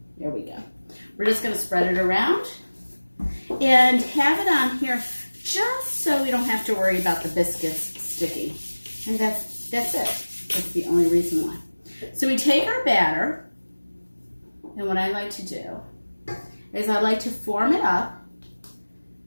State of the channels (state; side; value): inverted; both; correlation -1.00